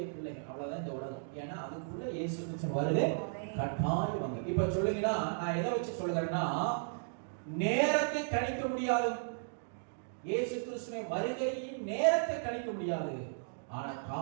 பிள்ளைகள், அவ்வளவுதான் இந்த உலகம். ஏன்னா அதுக்குள்ள இயேசு கிறிஸ்து வருகை கட்டாயம் வாங்க. இப்ப சொல்லுங்கன்னா, நான் எதை வச்சு சொல்லுகிறேன்னா, நேரத்தை கணிக்க முடியாது. இயேசு கிறிஸ்துவின் வருகையின் நேரத்தை கணிக்க முடியாது, ஆனா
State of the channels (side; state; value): left; silent; digital silence